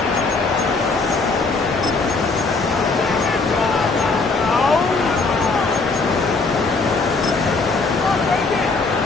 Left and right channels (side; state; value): right; quieter; 3.9 dB